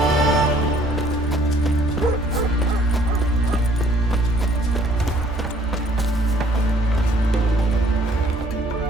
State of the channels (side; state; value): both; normal; correlation 0.60